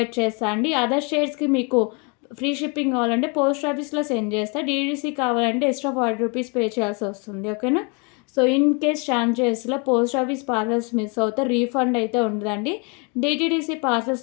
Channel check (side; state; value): right; quieter; 33.2 dB